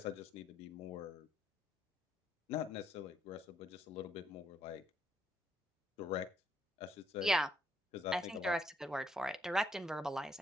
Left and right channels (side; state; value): both; normal; correlation 0.73